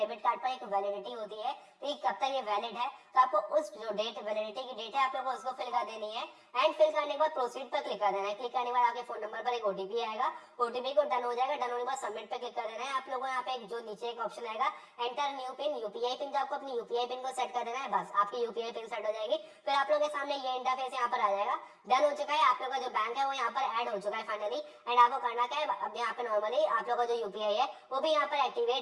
कार्ड पर एक वैलिडिटी होती है, तो ये कब तक ये वैलिड है, तो आपको उस जो डेट वैलिडिटी की डेट है आप लोग को उसको फिल कर देनी है। एंड फिल करने के बाद प्रोसीड पर क्लिक कर देना है। क्लिक करने के बाद आपके फोन नंबर पर एक ओटीपी आएगा, ओटीपी को डन हो जाएगा, डन होने के बाद सबमिट पे क्लिक कर देना है। आप लोगों को यहाँ पे एक जो नीचे एक ऑप्शन आएगा enter new pin, UPI pin, जो आपको अपनी यूपीआई पिन को सेट कर देना है, बस आपकी यूपीआई पिन सेट हो जाएगी। फिर आप लोगों के सामने ये इंटरफेस यहाँ पर आ जाएगा, डन हो चुका है, आप लोग का जो बैंक है वो यहाँ पर ऐड हो चुका है फाइनली। एंड आपको करना क्या है, अब यहाँ पे नॉर्मली आप लोग का जो यूपीआई है वो भी यहाँ पर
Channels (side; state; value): both; identical; correlation 1.00